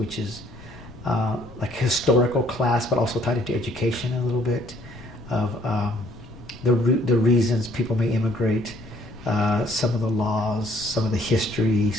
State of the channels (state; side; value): noise; left; rumble, 19 dB below the sound